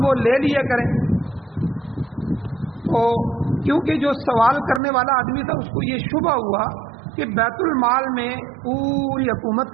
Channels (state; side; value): drops out; left; at 4.8 s